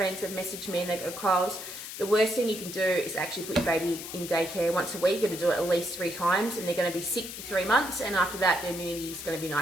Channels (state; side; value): noise; left; hiss, 9 dB below the sound